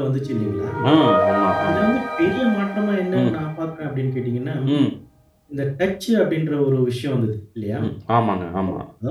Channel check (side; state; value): both; identical; correlation 1.00